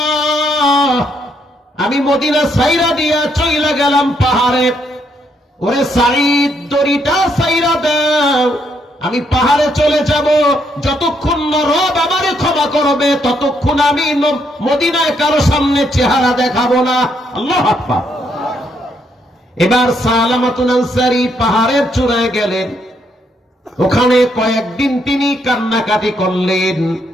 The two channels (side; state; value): both; normal; correlation 0.74